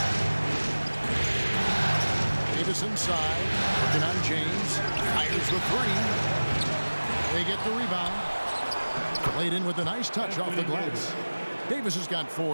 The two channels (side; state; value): both; inverted; correlation -1.00